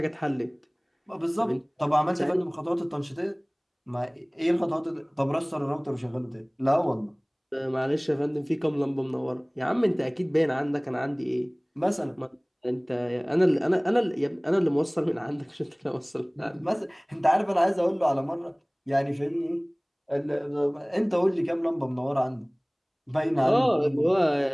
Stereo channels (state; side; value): identical; both; correlation 1.00